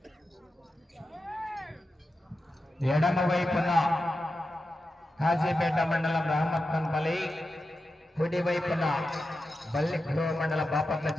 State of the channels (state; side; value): normal; both; correlation 0.91